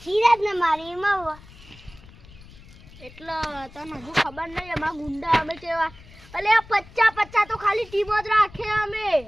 સિરાજ ને મારી માં એટલે તને હજુ ખબર નહીં એમાં ગુંડા અમે કેવા અલે આ 50 તો ખાલી ટીમ જ રાખે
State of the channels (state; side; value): noise; left; rumble, 21 dB below the sound